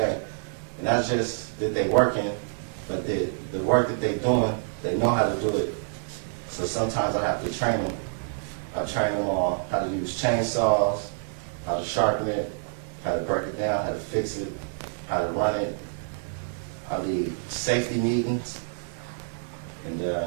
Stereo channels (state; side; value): silent; left; digital silence